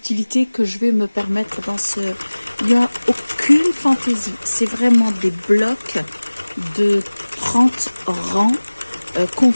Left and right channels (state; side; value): inverted; both; correlation -1.00